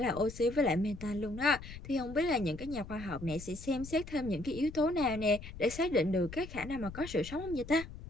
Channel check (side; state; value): left; noise; rumble, 13 dB below the sound